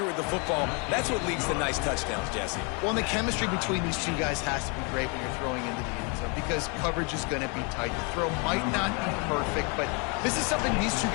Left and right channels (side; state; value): right; quieter; 33.6 dB